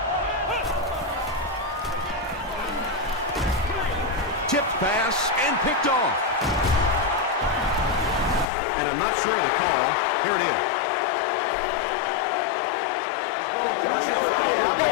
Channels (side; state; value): right; drops out; at 8.5 s